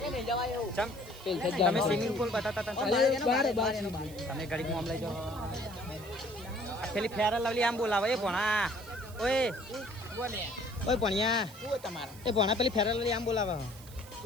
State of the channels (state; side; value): noise; right; hiss, 20 dB below the sound